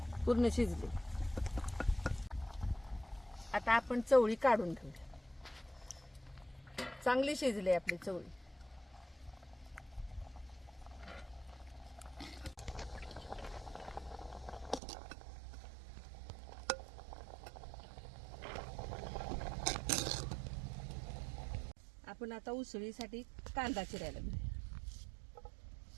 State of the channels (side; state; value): left; drops out; at 14.8 s